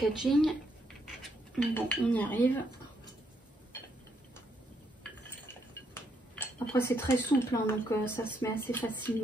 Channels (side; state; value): both; normal; correlation 0.75